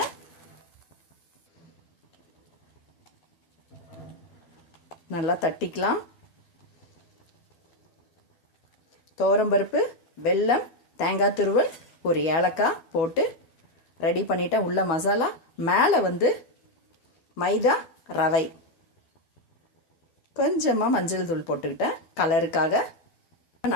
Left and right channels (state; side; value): late; right; 12 ms